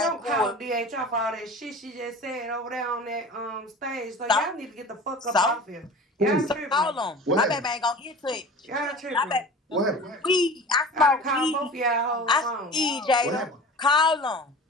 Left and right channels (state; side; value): normal; both; correlation 0.38